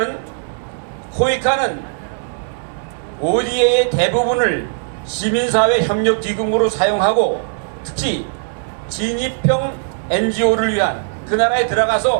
코이카는 ODA의 대부분을 시민사회협력기금으로 사용하고 특히 진입형 NGO를 위한 그 나라에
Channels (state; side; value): silent; left; digital silence